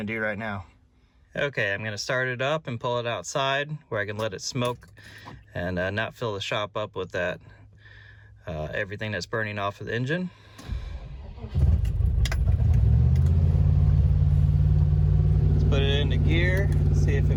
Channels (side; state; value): both; identical; correlation 1.00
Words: to do right now. Okay, I'm going to start it up and pull it outside where I can let it smoke and not fill the shop up with that everything that's burning off of the engine. Let's put it into gear, see if